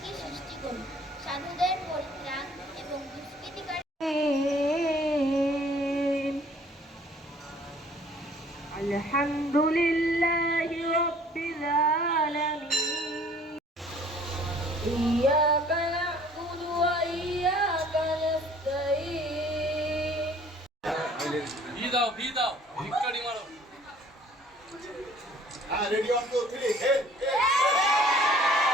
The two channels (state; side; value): normal; both; correlation 0.55